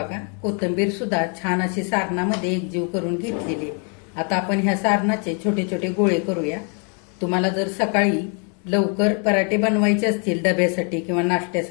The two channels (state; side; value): quieter; right; 39.0 dB